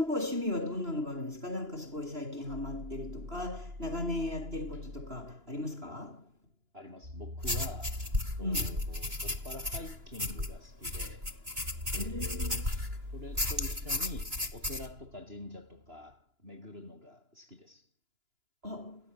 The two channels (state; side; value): late; left; 2.9 ms